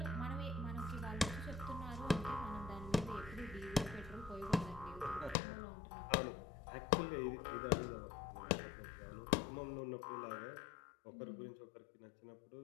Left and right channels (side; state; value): right; drops out; at 5.4 s